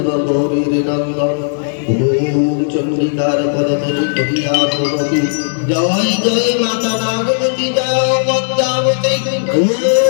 গৌরীর নন্দন ওম চন্ডিকার পদতলি কহিয়া প্রগতি জয় জয় মাতা নাগবতী জয় পদ্মাবতী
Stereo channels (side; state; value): right; silent; digital silence